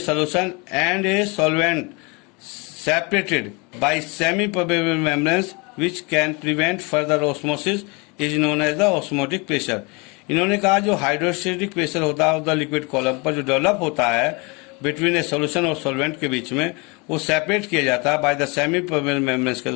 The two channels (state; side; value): quieter; right; 29.0 dB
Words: and a solvent separated by semi-permeable membranes which can prevent further osmosis is known as the osmotic pressure. इन्होंने कहा जो hydrostatic pressure होता है the liquid column पर जो develop होता है between a solution और सॉल्वेंट के बीच में, वो सेपरेट किया जाता है by the semi permeable membranes के